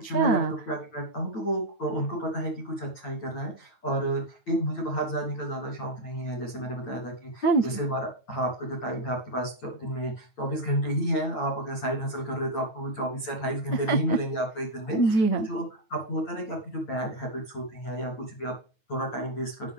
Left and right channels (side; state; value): right; late; 9.3 ms